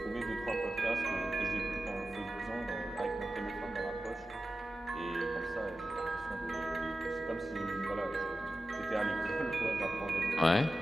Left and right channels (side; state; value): both; normal; correlation 0.93